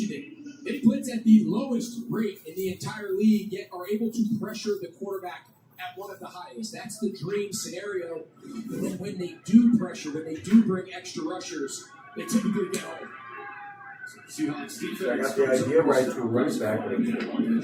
it. They blitz at the lowest rate in the entire league, yet are able to pressure the quarterback at one of the highest. That's the dream scenario. But then when they do pressure, when they do bring extra rushers, they typically get home. Seahawks defense. I got the idea right to running back.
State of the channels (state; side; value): identical; both; correlation 1.00